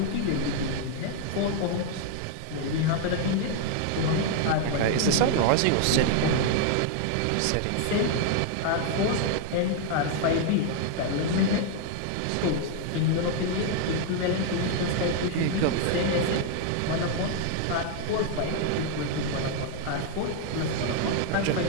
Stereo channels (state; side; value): different; both; correlation 0.00